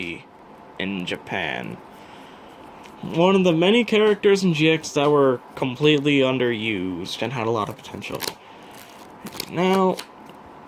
in Japan. One of the many characters in GX that were completely underused and had a lot of potential. Now,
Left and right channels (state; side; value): identical; both; correlation 1.00